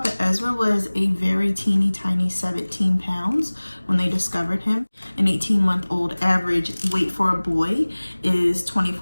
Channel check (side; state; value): both; inverted; correlation -1.00